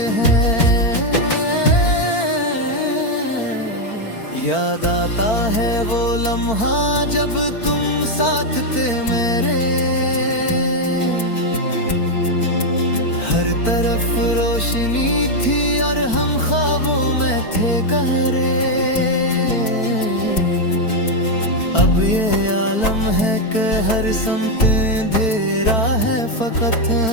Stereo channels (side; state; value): right; late; 4.5 ms